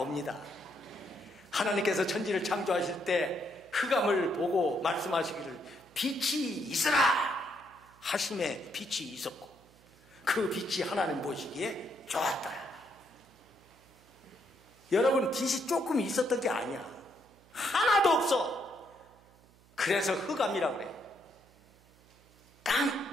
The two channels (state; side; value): noise; right; hum, 27 dB below the sound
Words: 하나님께서 천지를 창조하실 때 흑암을 보고 말씀하시기를 빛이 있으라 하심에 빛이 있었고 그 빛이 하나님 보시기에 좋았다. 여러분, 빛이 조금 있었던 게 아니야. 하나도 없어. 그래서 흑암이라고 그래.